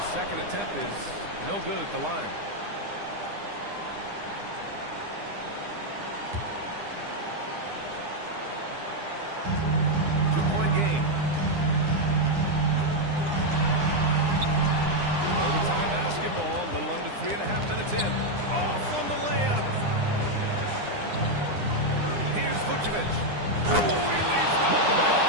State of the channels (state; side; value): late; left; 9.9 ms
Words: second attempt is no good at the line. Two-point game. Overtime basketball, a little under 3.5 minutes in. Off on the layup. Here's Vucevic. Oh, he leaves no